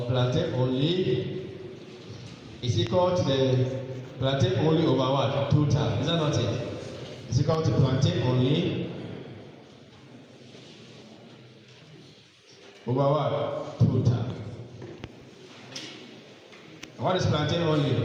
plantain only is equal to the plantain only over what? Total. Is that not it? It's equal to plantain only over what? Total. And what is plantain only?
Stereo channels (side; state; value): both; identical; correlation 1.00